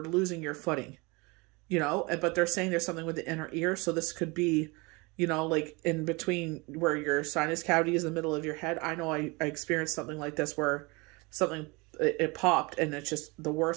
losing your footing, but they're saying there's something with the inner ear. So this could be, like in between where your sinus cavity is in the middle of your head. I know I experienced something like this where it popped and it's just the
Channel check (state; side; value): quieter; left; 26.7 dB